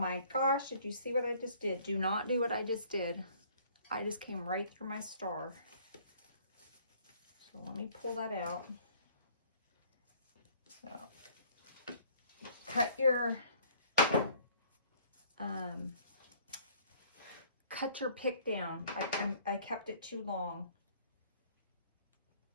gosh, did you see what I just did? Do not do what I just did. I just came right through my star. So let me pull that out. So cut your pick down. I kept it too long.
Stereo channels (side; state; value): both; inverted; correlation -0.57